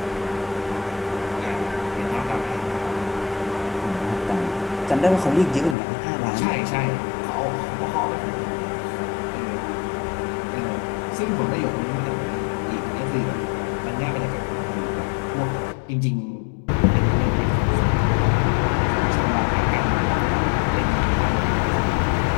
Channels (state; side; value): drops out; right; at 5.8 s